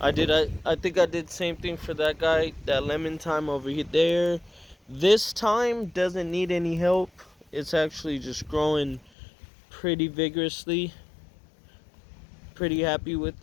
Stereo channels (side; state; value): right; drops out; at 9.1 s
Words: think I did the same thing for that guy, that lemon thyme over here there. This thyme doesn't need any help. It's actually just growing pretty vigorously. Pretty happy